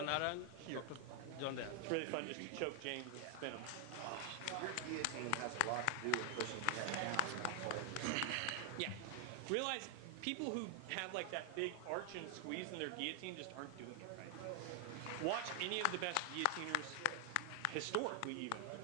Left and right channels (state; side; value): different; both; correlation 0.00